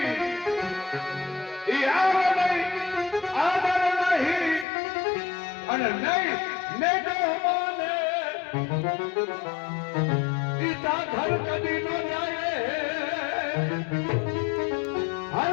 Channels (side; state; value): right; drops out; at 4.7 s